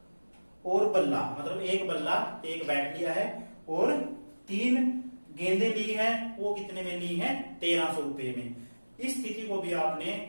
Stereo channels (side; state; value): both; inverted; correlation -1.00